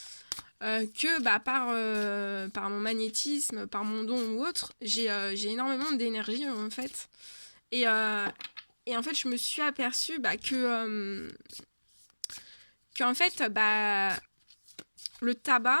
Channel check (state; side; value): inverted; both; correlation -1.00